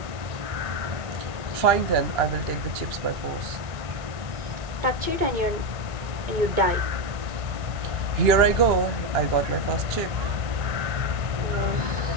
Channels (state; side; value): late; left; 1.6 ms